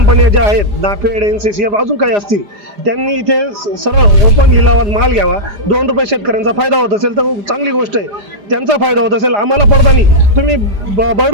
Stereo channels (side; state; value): left; late; 4.9 ms